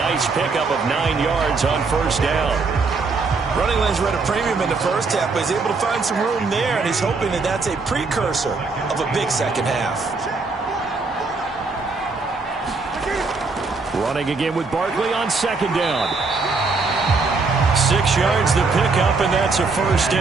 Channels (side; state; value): left; quieter; 4.1 dB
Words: pickup of 9 yards on 1st down. Running lanes were at a premium in the first half, but he's able to find some room there, and he's hoping that that's a precursor of a big second half. Running again with Barkley on 2nd down. 6 yards the pickup, and that's a 1st